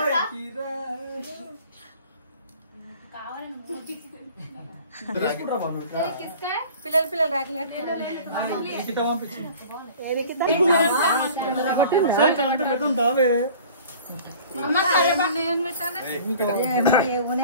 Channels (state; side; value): inverted; both; correlation -0.45